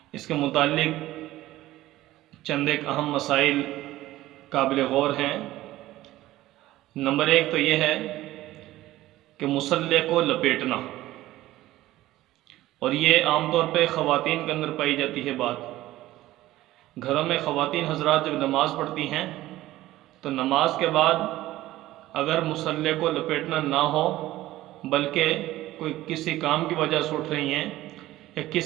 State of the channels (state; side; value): quieter; left; 15.9 dB